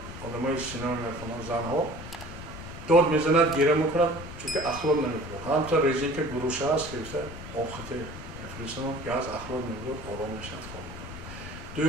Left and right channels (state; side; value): noise; left; rumble, 12 dB below the sound